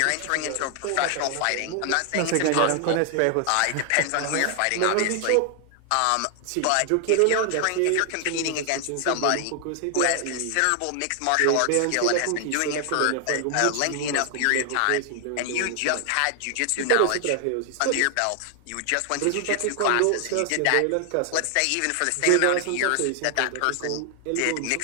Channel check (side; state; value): both; different; correlation 0.00